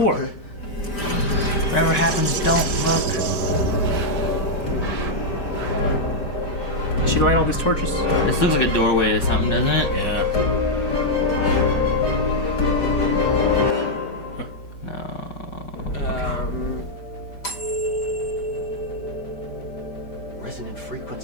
Okay. Whatever happens, don't look. Did she light all these torches? This looks like a doorway to something, doesn't it? Yeah. No. Resonant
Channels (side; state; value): right; late; 5.0 ms